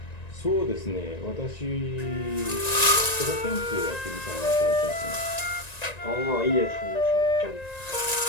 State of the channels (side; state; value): right; late; 1.9 ms